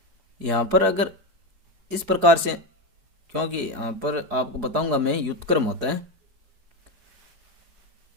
यहाँ पर अगर इस प्रकार से, क्योंकि यहाँ पर आपको बताऊंगा मैं, व्युत्क्रम होता है।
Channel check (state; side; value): late; left; 4.8 ms